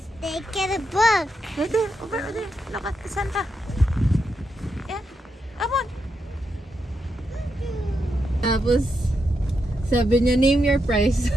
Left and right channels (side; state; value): both; normal; correlation 0.83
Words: They get a book. There, over there. Look at the Santa. Yeah. Come on. Tapos, sabi niya, name your price.